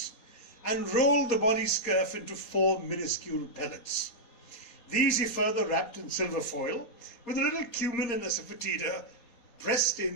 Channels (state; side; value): late; right; 4.2 ms